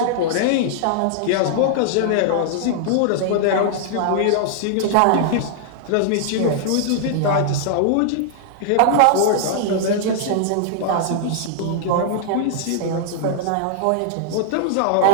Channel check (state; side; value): different; both; correlation -0.01